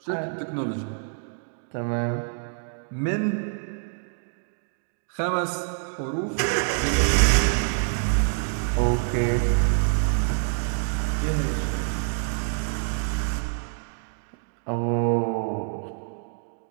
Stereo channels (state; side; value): silent; left; digital silence